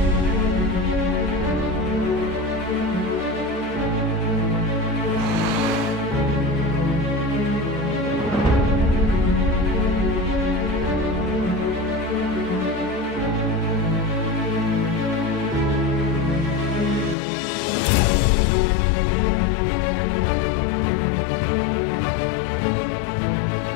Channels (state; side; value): drops out; right; at 17.2 s